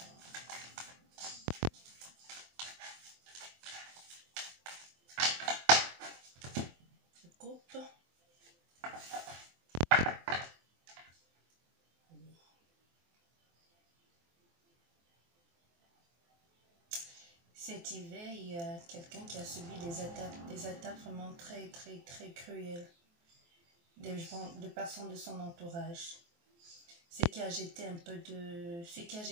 Je coupe. Cet hiver, il y a quelqu'un qui a subi des attaques vraiment très cruelles de personnes de son entourage. Ce qui a jeté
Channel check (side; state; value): left; late; 24 ms